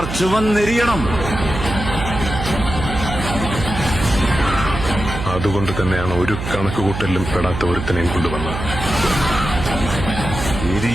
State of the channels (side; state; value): right; noise; hum, 6 dB below the sound